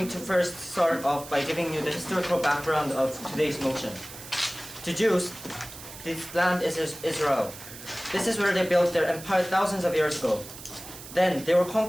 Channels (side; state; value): right; noise; hiss, 14 dB below the sound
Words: to first start off by giving you the historical background of today's motion. To Jews, this land is Israel. This is where they built their empire thousands of years ago. Then they were